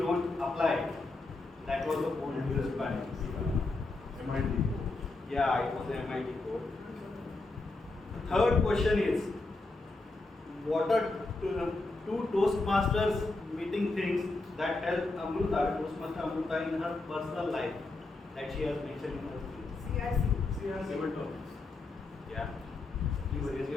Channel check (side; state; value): right; quieter; 3.2 dB